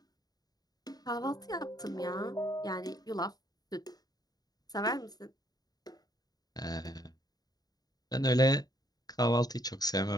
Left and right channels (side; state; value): right; late; 0.19 ms